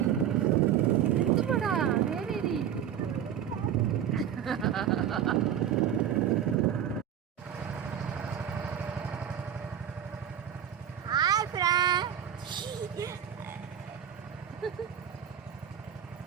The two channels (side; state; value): left; quieter; 9.5 dB